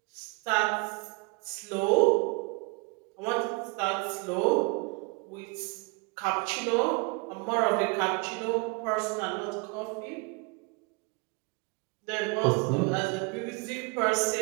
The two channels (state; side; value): quieter; left; 30.1 dB